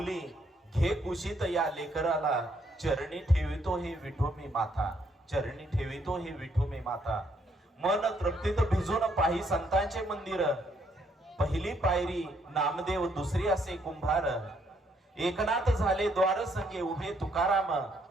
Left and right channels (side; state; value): both; normal; correlation 0.71